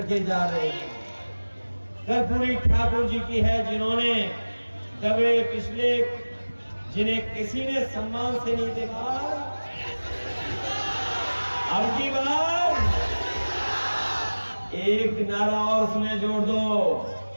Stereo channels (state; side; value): inverted; both; correlation -1.00